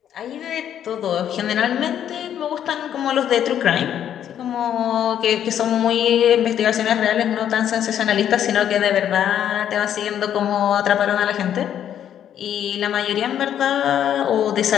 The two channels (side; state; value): right; quieter; 9.9 dB